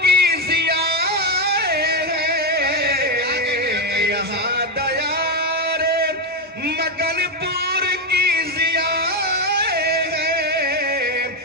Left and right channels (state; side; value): normal; both; correlation 0.08